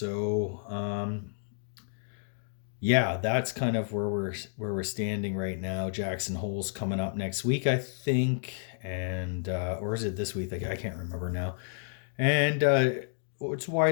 yeah, that's kind of where we're standing right now. Jackson Hole's coming up next week, I think, and or is it this week? I can't remember now. And it's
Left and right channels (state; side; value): silent; right; digital silence